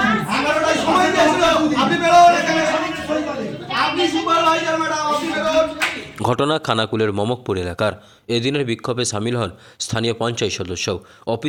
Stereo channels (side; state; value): both; identical; correlation 1.00